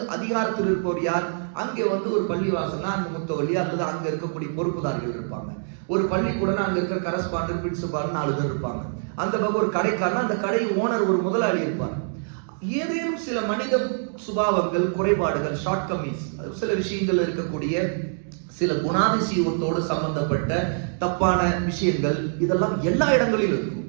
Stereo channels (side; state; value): left; silent; digital silence